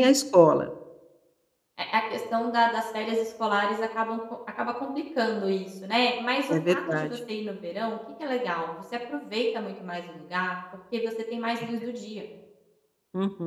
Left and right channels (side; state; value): both; identical; correlation 1.00